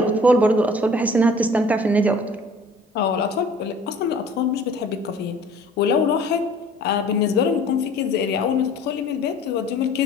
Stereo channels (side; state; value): both; normal; correlation 0.50